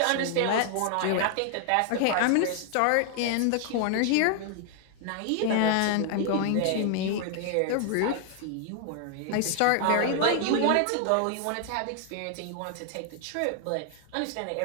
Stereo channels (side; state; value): both; different; correlation 0.00